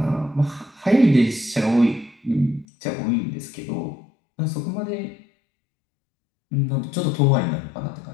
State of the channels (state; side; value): drops out; right; at 2.7 s